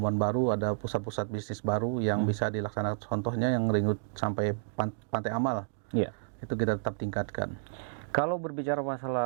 baru, ada pusat-pusat bisnis baru yang bisa dilaksanakan. Contohnya yang ring road sampai Pantai Amal. Iya. Itu kita tetap tingkatkan. Kalau berbicara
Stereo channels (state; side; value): silent; left; digital silence